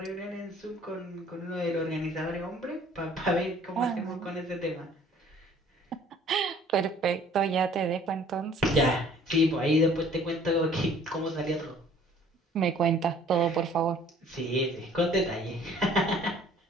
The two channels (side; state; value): both; normal; correlation 0.54